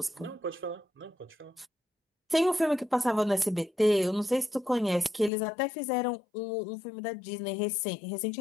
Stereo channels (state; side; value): drops out; right; at 5.3 s